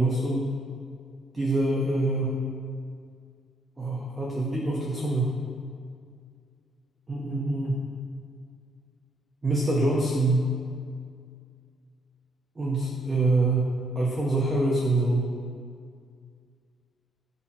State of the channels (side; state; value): both; normal; correlation 0.70